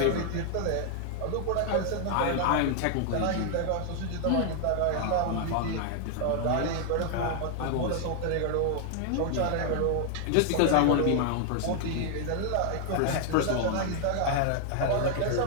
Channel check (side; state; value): both; different; correlation 0.00